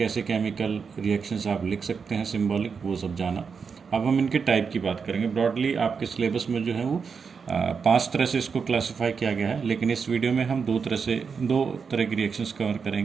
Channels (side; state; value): left; quieter; 5.8 dB